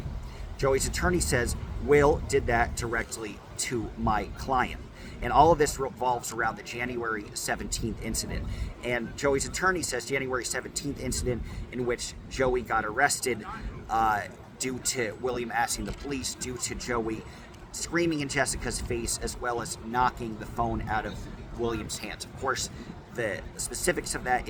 Joey's attorney says Will did that directly to my client. And all of this revolves around the January 17th incident. And Joey's attorney says January 17th incident in which Joey got arrested due to William asking the police, due to Joey screaming in Jessica's face, as well as knocking the phone out of William's hands. Of course, the specifics of that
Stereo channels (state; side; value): identical; both; correlation 1.00